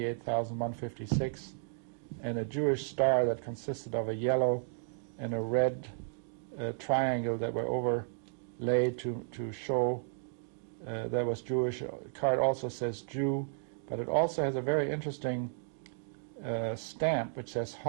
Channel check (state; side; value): silent; left; digital silence